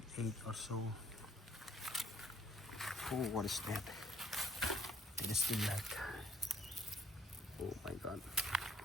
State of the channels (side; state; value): both; normal; correlation 0.63